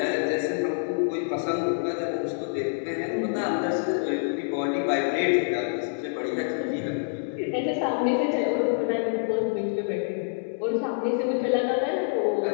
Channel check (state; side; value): silent; right; 60 dB below the other